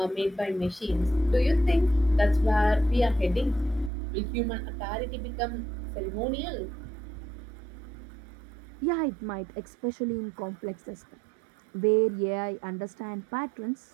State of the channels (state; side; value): drops out; left; at 3.9 s